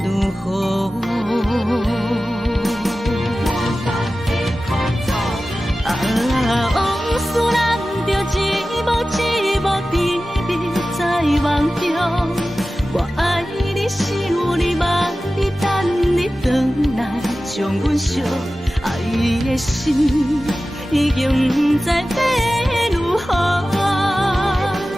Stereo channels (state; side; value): normal; both; correlation 0.95